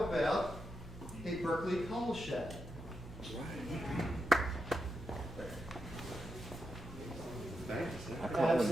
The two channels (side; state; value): both; normal; correlation 0.85